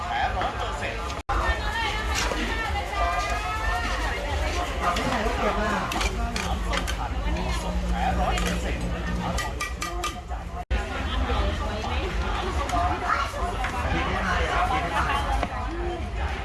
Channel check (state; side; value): identical; both; correlation 1.00